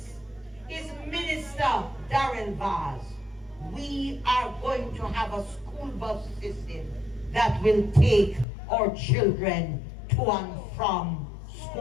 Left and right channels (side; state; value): right; drops out; at 8.5 s